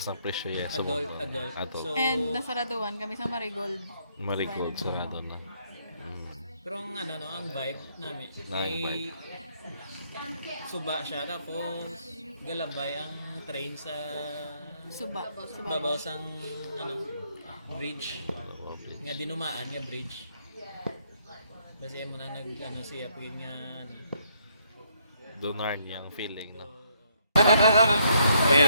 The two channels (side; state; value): both; inverted; correlation -0.71